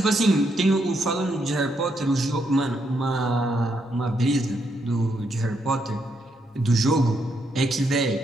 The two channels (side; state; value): both; normal; correlation 0.78